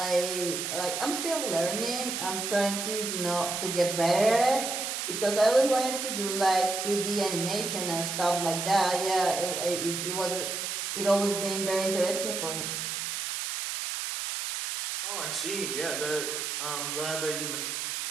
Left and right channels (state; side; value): noise; right; hiss, 3 dB below the sound